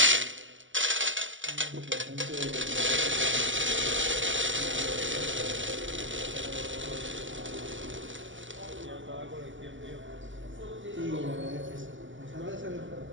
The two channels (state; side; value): late; left; 0.55 ms